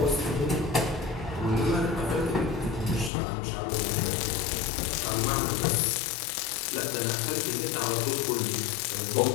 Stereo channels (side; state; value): right; drops out; at 3.1 s